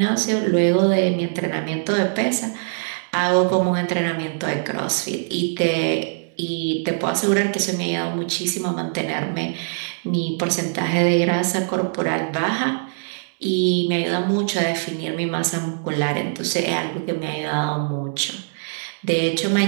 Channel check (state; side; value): silent; left; digital silence